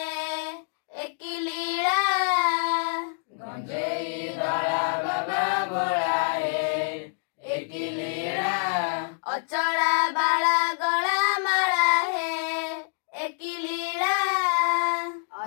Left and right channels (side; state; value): right; silent; digital silence